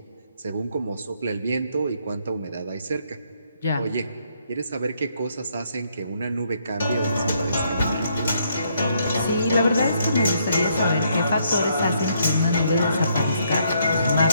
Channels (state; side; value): inverted; both; correlation -0.72